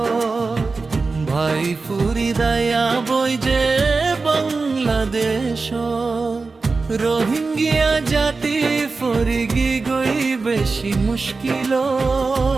ভাই ফুরি দয়া বই যে বাংলাদেশ রোহিঙ্গিয়া জাতি ফরিগি গই বেশি মুশকিল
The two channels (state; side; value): quieter; left; 4.0 dB